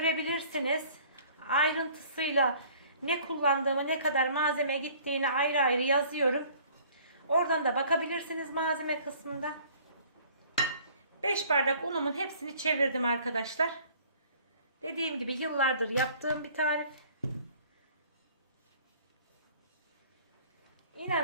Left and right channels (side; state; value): both; inverted; correlation -0.53